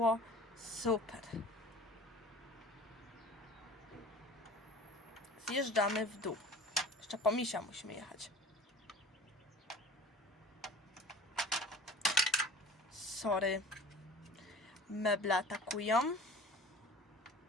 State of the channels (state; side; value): normal; both; correlation 0.42